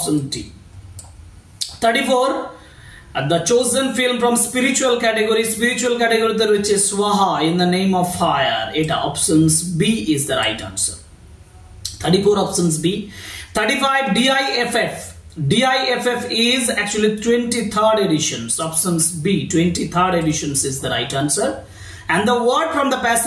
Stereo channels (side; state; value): both; identical; correlation 1.00